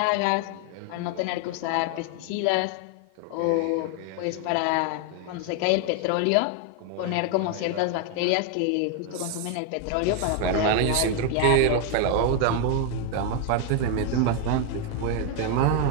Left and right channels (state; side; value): different; both; correlation 0.01